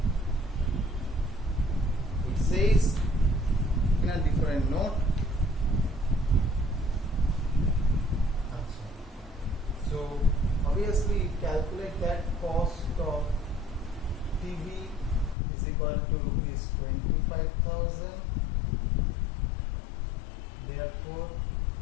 It says in a different note. So obviously you calculate that cost of TV is equal to rupees 25,000. Therefore,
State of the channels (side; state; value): right; drops out; at 15.4 s